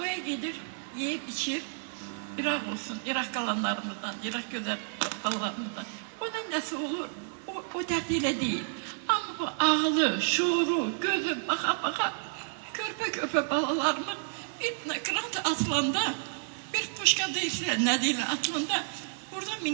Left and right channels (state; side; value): silent; left; 57 dB below the other